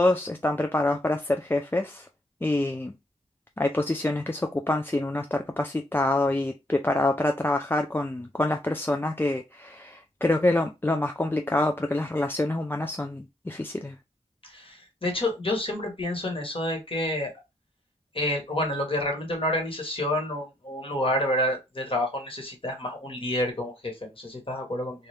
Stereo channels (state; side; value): normal; both; correlation 0.71